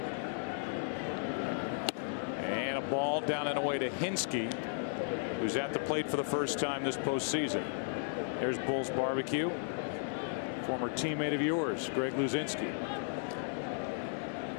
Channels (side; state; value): right; silent; digital silence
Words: And a ball down and away to Hinsky, who's at the plate for the first time this postseason. There's Bull's Barbecue, former teammate of yours, Greg Luzinski.